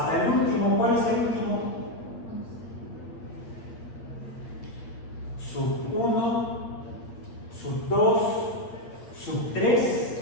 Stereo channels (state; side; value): late; right; 8.6 ms